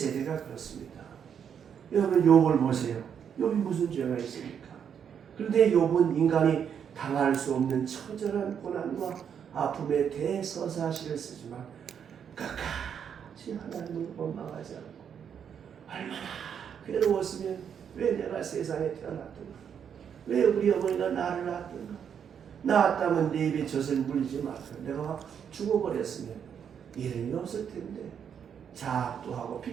그렇습니다. 여러분 욥을 보세요. 욥이 무슨 죄가 있습니까? 그런데 욥은 인간이 당할 수 없는 처절한 고난과 아픔의 대서사시를 쓰지만 끝까지 하나님을 원망하지 않고 얼마나 괴로웠으면 왜 내가 세상에 태어났던가? 왜 우리 어머니가 나를 낳았던가? 낳았다면 내 입에 젖을 물리지 마서 내가 죽어버렸으면 이름이 없을 텐데 자학도 하고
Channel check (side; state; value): left; quieter; 7.9 dB